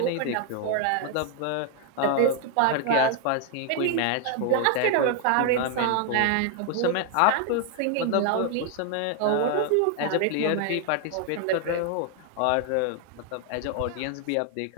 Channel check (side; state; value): both; different; correlation 0.00